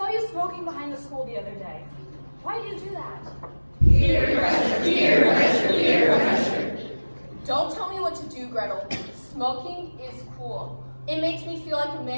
you smoking behind the school the other day. Why do you do that? Peer pressure, peer pressure, peer pressure. Don't tell me what to do, Gretel. Smoking is cool. It makes me feel like a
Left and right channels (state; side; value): inverted; both; correlation -1.00